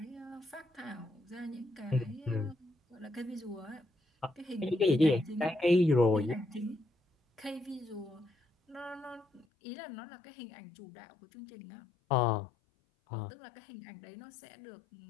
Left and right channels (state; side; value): drops out; right; at 9.5 s